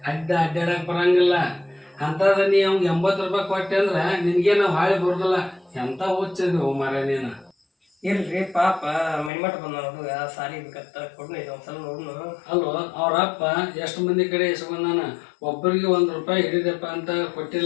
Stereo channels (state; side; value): drops out; right; at 9.3 s